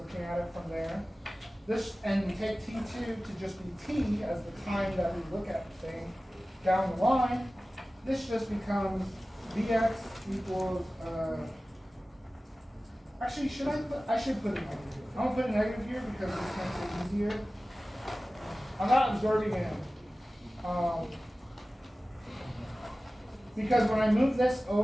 at it from there. This, and we take t2 to just be t as the time that we look at the thing down the line. This just becomes vx equals, actually, I should put a negative here. I'm going to put a negative here because this makes it easier. I'm not absorbing it. Because when I move this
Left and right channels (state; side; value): normal; both; correlation 0.96